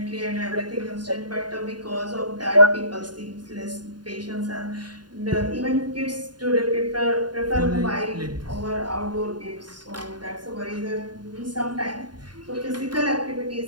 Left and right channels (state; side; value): late; left; 0.70 ms